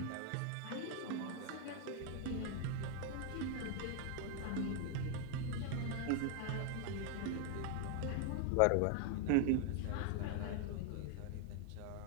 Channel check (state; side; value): different; both; correlation 0.00